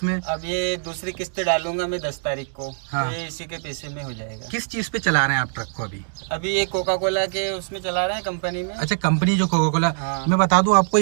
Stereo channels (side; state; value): left; silent; digital silence